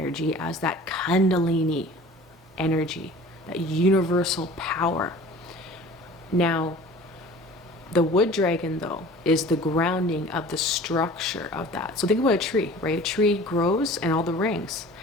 as that Kundalini energy, that universal power. Now, the wood dragon, though, is the grounding of the structure of that. So think about a tree, right? A tree grows and all the rings.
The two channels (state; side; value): normal; both; correlation 0.44